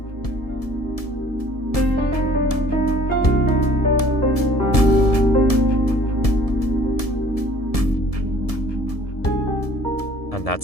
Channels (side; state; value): right; late; 1.7 ms